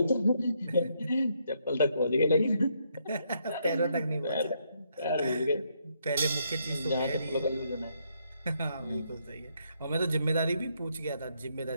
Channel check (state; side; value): inverted; both; correlation -0.75